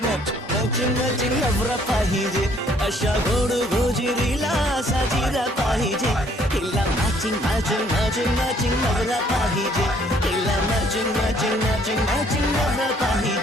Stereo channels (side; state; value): both; normal; correlation 0.63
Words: मॅचिंग मॅचिंग मॅचिंग नवरा पाहिजे, अशा गोड गोजिरीला साजिरा पाहिजे. हिला मॅचिंग मॅचिंग मॅचिंग मॅचिंग नवरा पाहिजे, हिला मॅचिंग मॅचिंग मॅचिंग मॅचिंग नवरा